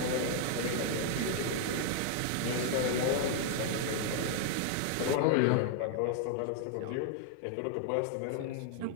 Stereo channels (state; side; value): different; both; correlation 0.00